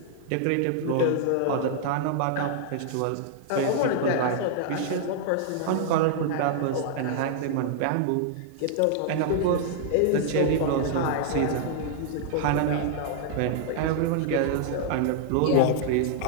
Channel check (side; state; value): both; different; correlation -0.01